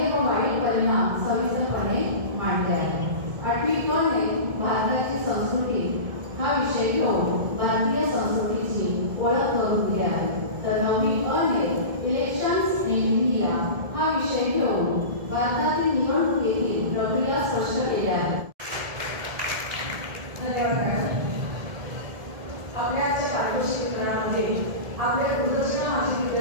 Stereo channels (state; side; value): late; left; 1.7 ms